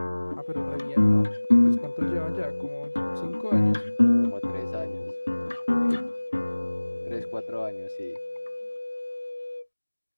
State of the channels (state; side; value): inverted; both; correlation -1.00